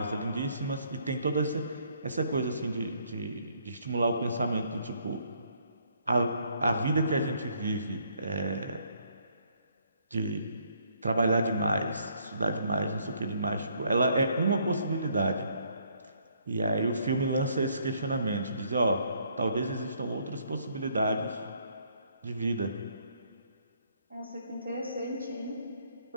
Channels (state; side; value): inverted; both; correlation -0.67